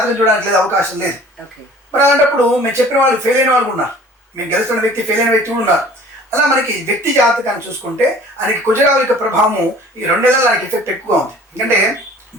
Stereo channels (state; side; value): normal; both; correlation 0.49